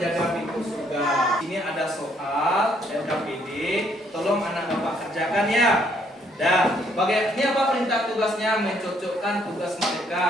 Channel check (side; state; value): both; normal; correlation 0.68